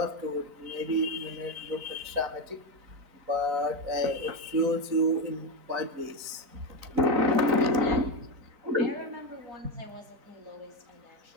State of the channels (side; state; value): left; late; 4.0 ms